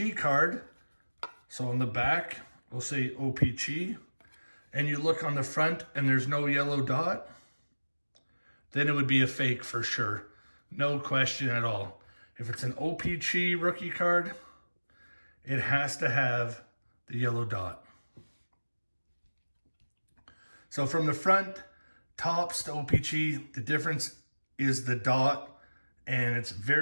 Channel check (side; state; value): both; inverted; correlation -1.00